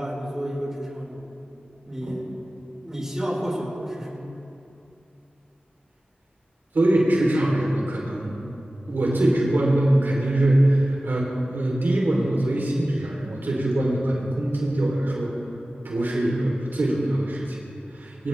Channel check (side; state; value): both; normal; correlation 0.96